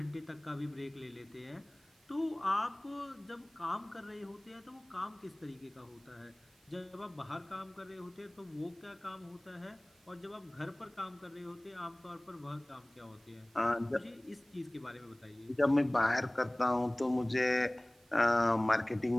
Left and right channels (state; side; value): noise; right; hiss, 30 dB below the sound